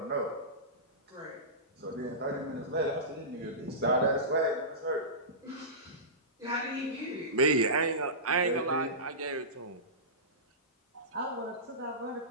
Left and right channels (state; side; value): normal; both; correlation -0.20